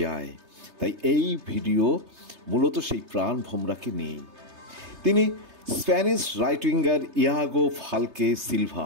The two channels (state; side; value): late; left; 3.3 ms